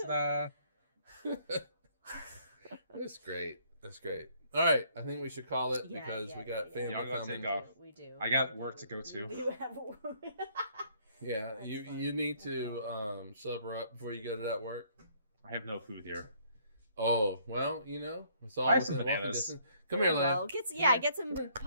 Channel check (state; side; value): inverted; both; correlation -0.64